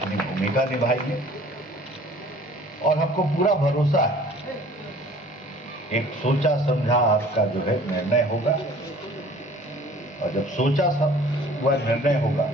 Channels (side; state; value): both; normal; correlation 0.50